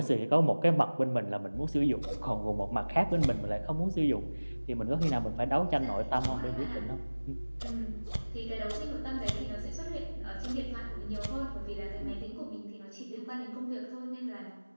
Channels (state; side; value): inverted; both; correlation -1.00